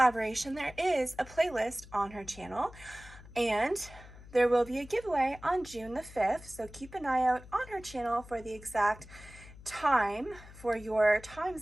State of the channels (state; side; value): noise; left; hum, 18 dB below the sound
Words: there is a playlist on her channel, and there will be a giveaway on June the 5th, so keep an eye out on her channel for the exact time for your time